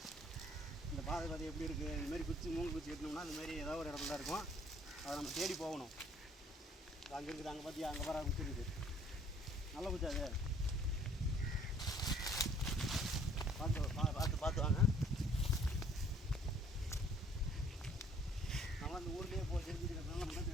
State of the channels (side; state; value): both; normal; correlation 0.58